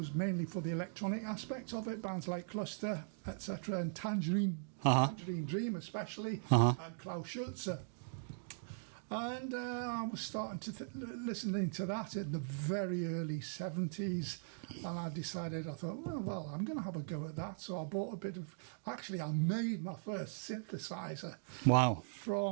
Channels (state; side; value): silent; left; digital silence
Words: mainly for the electronic aspect of it, bands like Cluster, etc., and Tangerine Dream especially, and Klaus Schulze. And I was starting to listening to that in the very early 70s, and I decided, I thought, well, I'm going to have a go at that. So I bought a bit of, actually I made my first synthesizer. Wow.